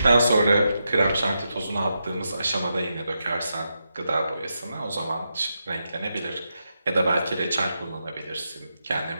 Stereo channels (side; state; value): both; inverted; correlation -0.85